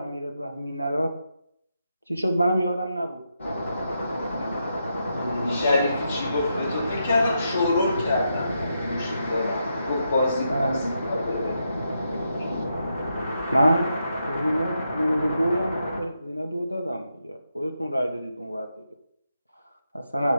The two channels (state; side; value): inverted; both; correlation -0.83